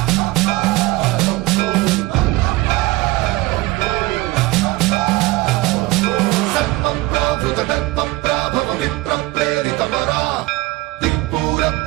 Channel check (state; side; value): quieter; left; 21.0 dB